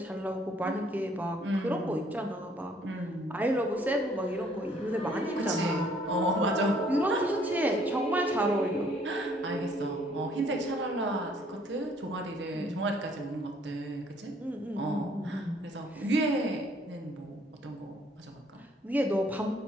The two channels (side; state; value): both; normal; correlation 0.62